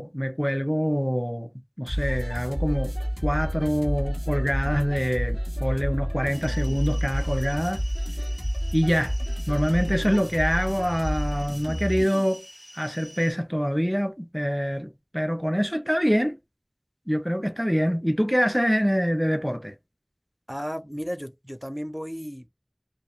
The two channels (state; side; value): identical; both; correlation 1.00